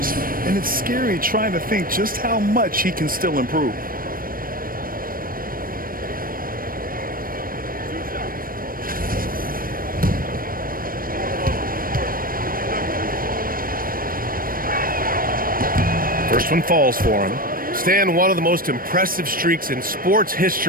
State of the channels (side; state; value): left; late; 0.41 ms